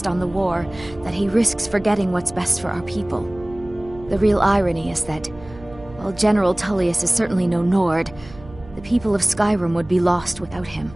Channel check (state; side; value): noise; right; hum, 19 dB below the sound